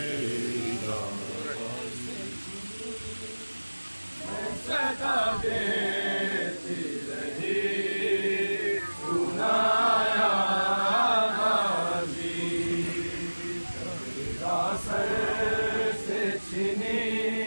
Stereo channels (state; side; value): inverted; both; correlation -1.00